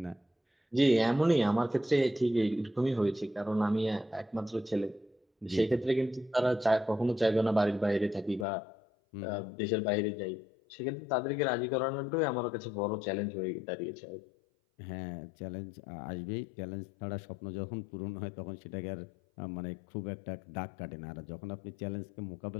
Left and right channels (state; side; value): drops out; right; at 8.5 s